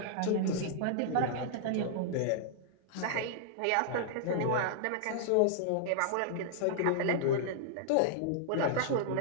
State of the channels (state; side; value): different; both; correlation -0.01